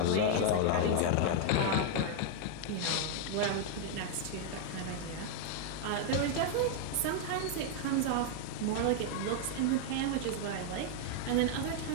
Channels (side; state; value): both; different; correlation 0.00